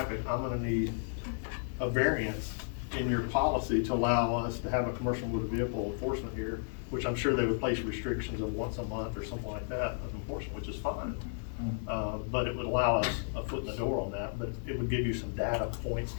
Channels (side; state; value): right; silent; 56 dB below the other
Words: I'm gonna need a variance in your policy to allow us to have a commercial motor vehicle enforcement here, which I'm sure they would place restrictions of once a month or something like that of enforcement, which is fine. But it would allow us a foot in the door on that, but it would give you some data points